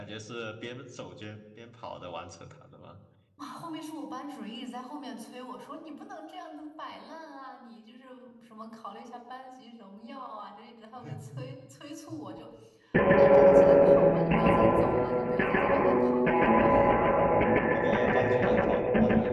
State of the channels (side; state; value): both; identical; correlation 1.00